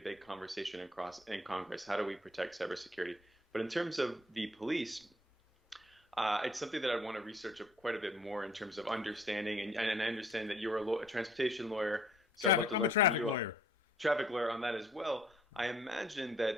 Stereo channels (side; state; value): both; normal; correlation 0.60